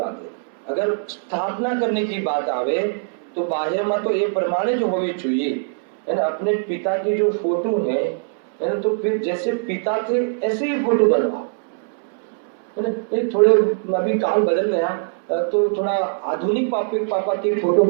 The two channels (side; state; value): left; silent; 64 dB below the other